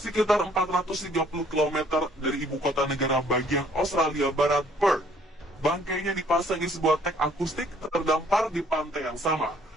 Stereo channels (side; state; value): both; normal; correlation 0.61